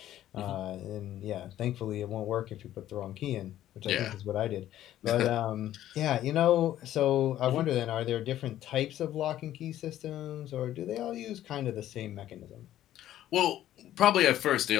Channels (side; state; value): right; quieter; 12.8 dB